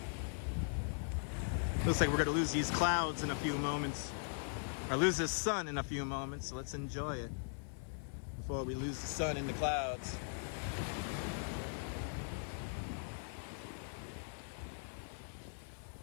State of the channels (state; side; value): silent; right; 51 dB below the other